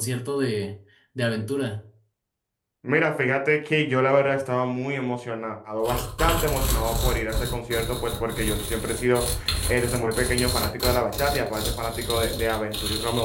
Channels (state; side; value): identical; both; correlation 1.00